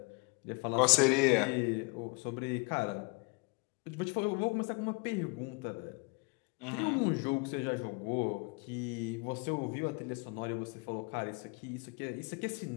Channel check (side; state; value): right; quieter; 29.6 dB